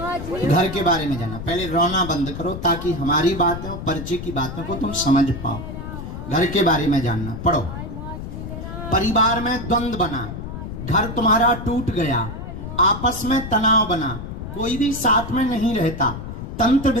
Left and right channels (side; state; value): left; noise; rumble, 8 dB below the sound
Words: घर के बारे में जानना। पहले रोना बंद करो ताकि हमारी बातें और परिचय की बातों को तुम समझ पाओ। घर के बारे में जानना। पढ़ो। परिवार में द्वंद्व बना, घर तुम्हारा टूट गया, आपस में तनाव बना, कोई भी साथ में नहीं रहता। तंत्र